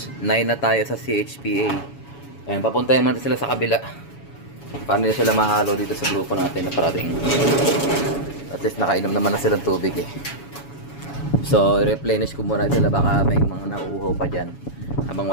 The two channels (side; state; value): right; late; 7.1 ms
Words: 9 na tayo sa CHPA. Ayan, papuntahin natin sila sa kabila. Para nila sila mahalo dito sa grupo natin na parating. At least nakainom naman na silang tubig eh. So, i-replenish ko muna sila, baka may mga nauuhaw pa dyan habang